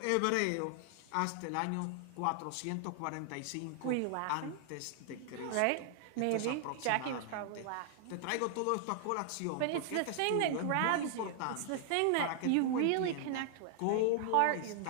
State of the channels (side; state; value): both; different; correlation 0.00